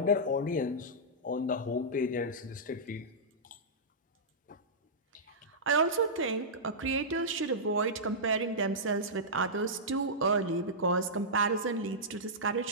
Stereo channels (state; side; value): normal; both; correlation -0.13